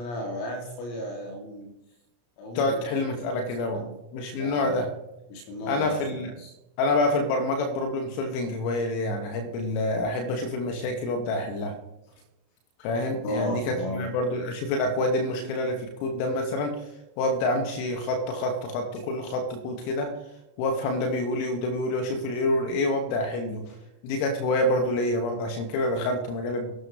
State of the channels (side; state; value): right; late; 34 ms